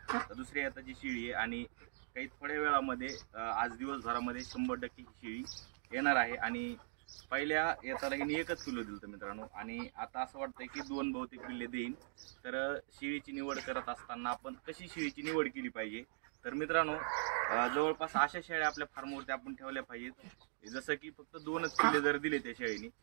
तर दुसऱ्या येताची शेळी आहे आणि काही थोड्या वेळामध्ये आज दिवसभरामध्ये 100% ही शेळी येणार आहे। आणि पहिल्या येताला हिने एकच पिल्लू दिलं मित्रांनो, आणि आता असं वाटतंय की 2 बहुतेक पिल्ले देईन। तर शेळीची निवड करत असताना आपण कशी शेळीची निवड केली पाहिजे, तर मित्रांनो जवळपास अशा शेळ्या आपल्या फार्मवरती आपण ठेवल्या पाहिजेत जसं की फक्त 2च पिल्ले जर दिले त्या शेळीने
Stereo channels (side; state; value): left; silent; digital silence